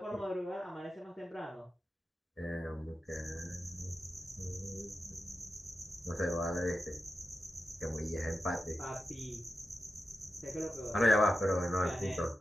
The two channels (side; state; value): both; normal; correlation 0.91